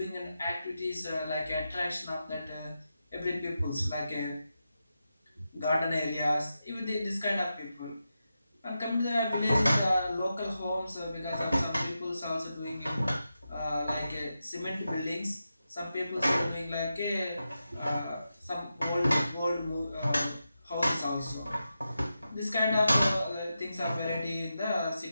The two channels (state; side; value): inverted; both; correlation -0.89